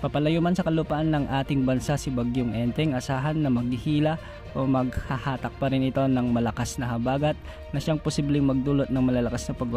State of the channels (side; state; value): both; identical; correlation 1.00